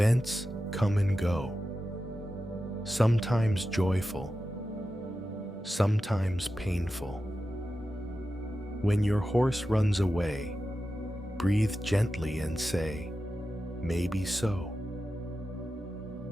come and go, sometimes joyful, sometimes painful. When your horse runs away, breathe gently and say, maybe so.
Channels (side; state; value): both; normal; correlation 0.92